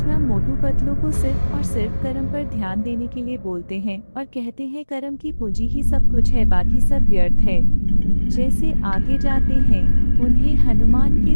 मोटू पतलू को सिर्फ और सिर्फ कर्म पर ध्यान देने के लिए बोलते हैं और कहते हैं कर्म की पूंजी ही सब कुछ है, बाकी सब व्यर्थ है। जैसे आगे जाते हैं उन्हें हनुमान के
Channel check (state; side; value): inverted; both; correlation -1.00